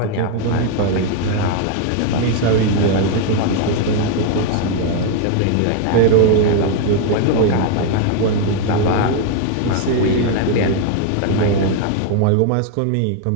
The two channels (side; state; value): both; different; correlation 0.00